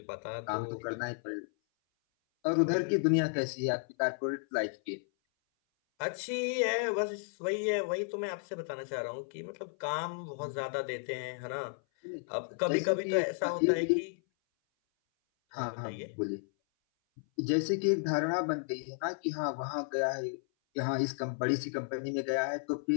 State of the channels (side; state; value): right; silent; 56 dB below the other